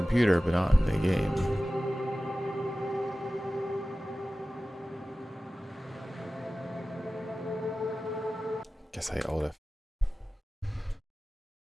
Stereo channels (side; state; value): both; normal; correlation 0.96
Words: but not in the game. Guess I ought to.